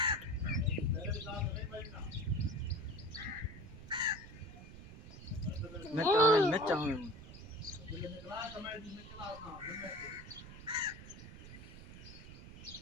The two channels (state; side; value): noise; right; rumble, 14 dB below the sound